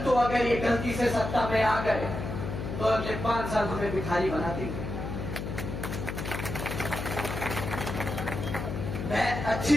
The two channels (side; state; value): left; noise; hum, 5 dB below the sound